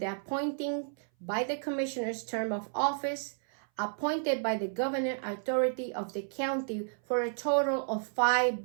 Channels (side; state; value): left; silent; 56 dB below the other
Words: appointing by the commissioner's term of office, appointed by the governing authority of the county for a total of 5